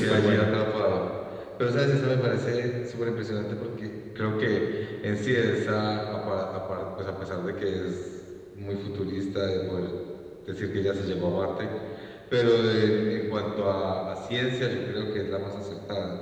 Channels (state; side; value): identical; both; correlation 1.00